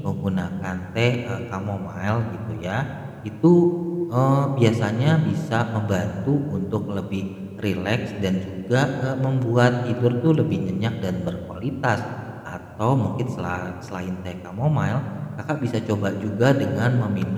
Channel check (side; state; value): both; identical; correlation 1.00